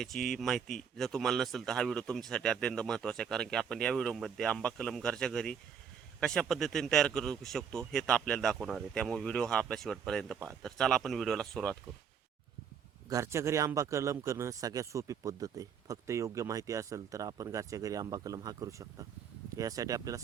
माहिती जर तुम्हाला नसेल तर हा व्हिडिओ तुमच्यासाठी अत्यंत महत्त्वाचा आहे. कारण की आपण या व्हिडिओमध्ये आंबा कलम घरच्या घरी कशा पद्धतीने तयार करू शकतो हे तर आपल्याला दाखवणार आहे. त्यामुळे व्हिडिओ हा आपल्या शेवटपर्यंत पहा. तर चला आपण व्हिडिओला सुरुवात करू. घरच्या घरी आंबा कलम करणं सगळ्यात सोपी पद्धत आहे. फक्त योग्य माहिती असेल तर आपण घरच्या घरी आंबा कलम हा करू शकता. यासाठी आपल्याला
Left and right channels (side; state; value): left; quieter; 7.2 dB